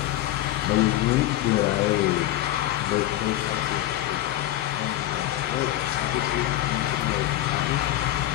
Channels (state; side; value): quieter; right; 14.4 dB